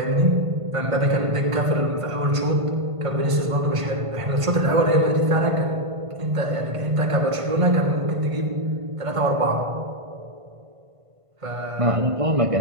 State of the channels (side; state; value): left; late; 1.5 ms